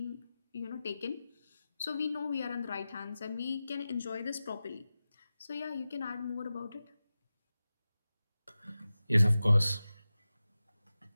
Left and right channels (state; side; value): inverted; both; correlation -0.95